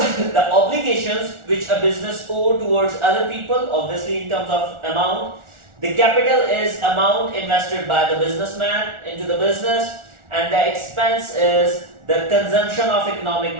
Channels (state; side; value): late; left; 1.4 ms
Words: obligations which a business owes towards other people, obviously in terms of amount. The capital is amount invested by the businessman into the business, and the expense is the consumption of economic